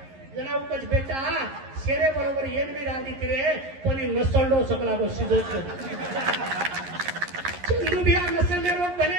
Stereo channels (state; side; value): late; left; 11 ms